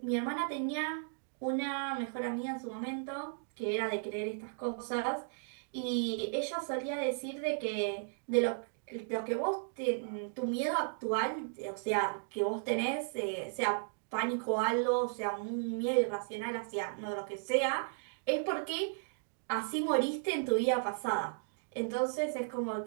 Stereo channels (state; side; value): silent; left; digital silence